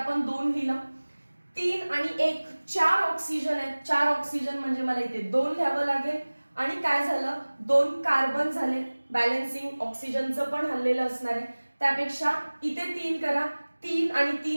2 लिहिलं. 3 आणि 1 4 ऑक्सिजन आहेत. 4 ऑक्सिजन म्हणजे मला इथे 2 लिहावं लागेल. आणि काय झालं? 2 कार्बन झाले. बॅलन्सिंग ऑक्सिजनचं पण हल्लेलं असणार आहे. त्यापेक्षा इथे 3 करा. 3 आणि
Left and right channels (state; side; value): inverted; both; correlation -1.00